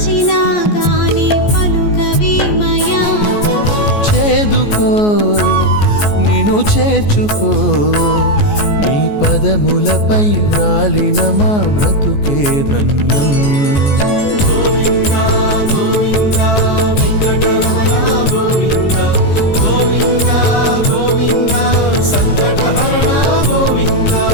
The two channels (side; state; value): right; late; 14 ms